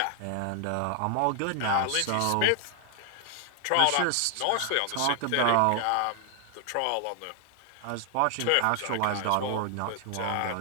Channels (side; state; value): both; different; correlation 0.00